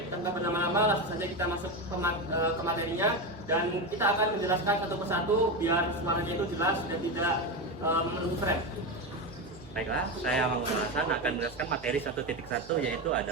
tanpa berlama-lama langsung saja kita masuk ke materinya dan kita akan menjelaskan satu persatu biar suaranya itu jelas dan tidak memenuhi frame. Baiklah, saya Mahmud Al-Hasan akan menjelaskan materi 1.1 yaitu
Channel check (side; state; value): both; normal; correlation 0.16